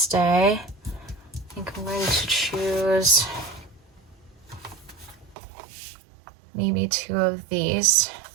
day. I think I'm going to choose maybe 2 of these.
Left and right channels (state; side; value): drops out; left; at 5.4 s